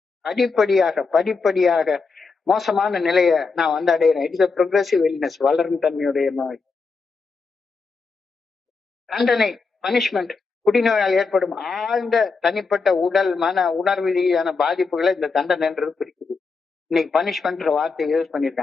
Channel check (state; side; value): quieter; right; 4.6 dB